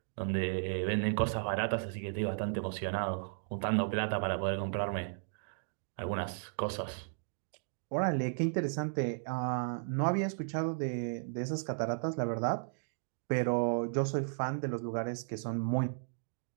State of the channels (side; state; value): left; silent; digital silence